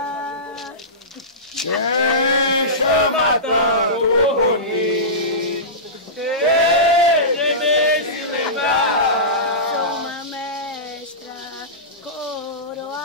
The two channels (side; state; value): both; normal; correlation -0.20